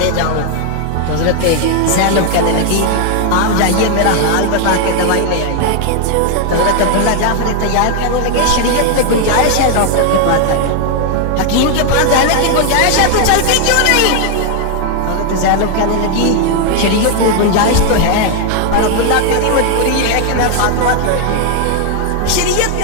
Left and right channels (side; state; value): both; different; correlation 0.00